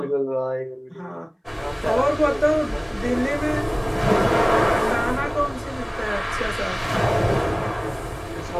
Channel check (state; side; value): identical; both; correlation 1.00